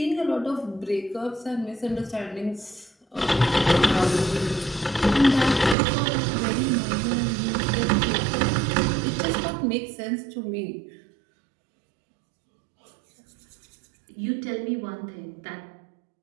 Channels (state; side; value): drops out; left; at 5.8 s